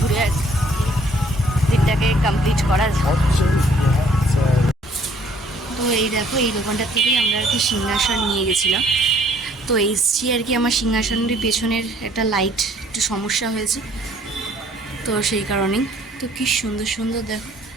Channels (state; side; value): normal; both; correlation 0.61